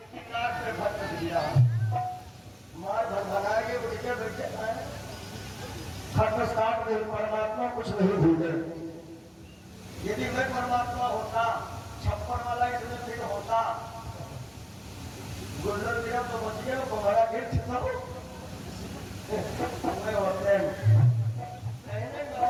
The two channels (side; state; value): both; identical; correlation 1.00